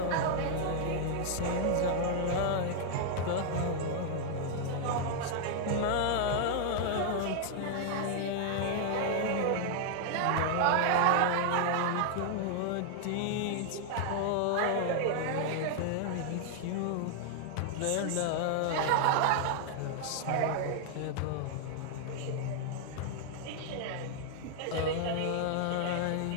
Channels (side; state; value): both; different; correlation 0.00